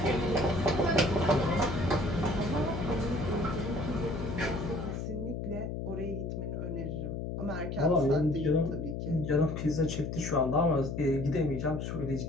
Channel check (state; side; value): noise; left; hum, 4 dB below the sound